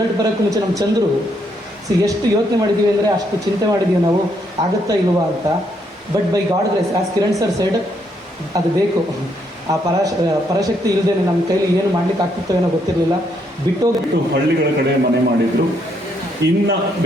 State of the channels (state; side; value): normal; both; correlation 0.74